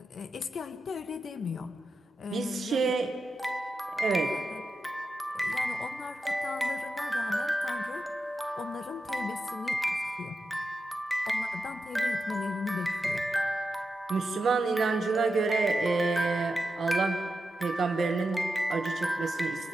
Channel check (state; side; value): normal; both; correlation 0.89